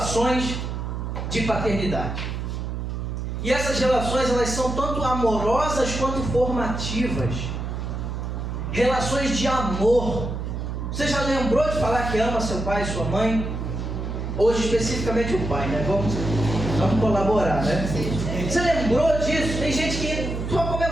de paternidade. E essas relações, elas são tanto amorosas quanto formativas. Relações de amor. Você já lembrou de falar que ama seu pai e sua mãe? Hoje, especificamente o pai, né? Vamos colaborar, né? Você lembrou disso? Tem gente que só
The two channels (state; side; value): noise; right; hum, 4 dB below the sound